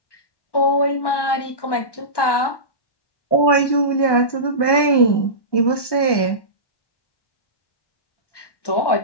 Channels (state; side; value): late; right; 1.1 ms